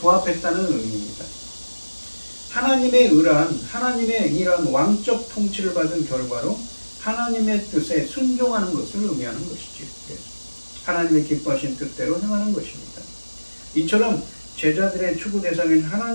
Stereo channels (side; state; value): both; inverted; correlation -1.00